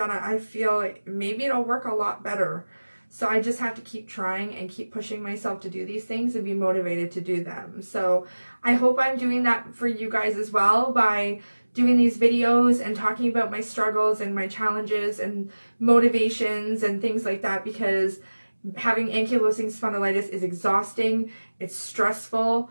I feel like maybe it'll work a lot better. So I just have to keep trying and keep pushing myself to do these things and be motivated to do them. So I hope I'm doing that for you guys as well by doing these videos and talking about my struggles and my challenges and motivations and things like that, because having ankylosing spondylitis is exhausting, it's stressful,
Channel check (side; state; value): both; inverted; correlation -1.00